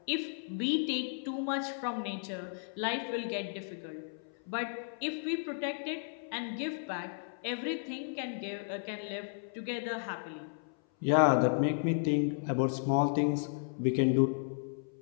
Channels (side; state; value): right; silent; 55 dB below the other